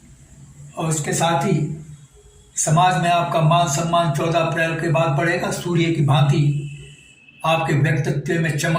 और इसके साथ ही समाज में आपका मान सम्मान 14 अप्रैल के बाद बढ़ेगा। सूर्य की भांति आपके व्यक्तित्व में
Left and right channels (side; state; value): both; identical; correlation 1.00